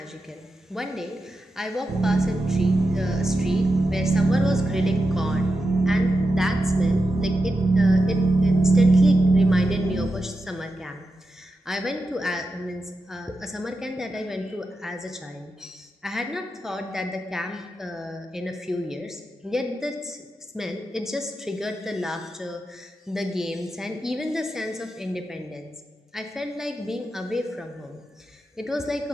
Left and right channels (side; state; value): both; normal; correlation 0.89